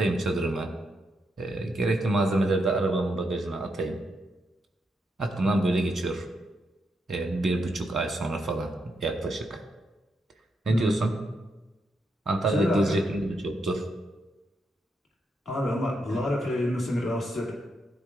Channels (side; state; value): both; normal; correlation 0.81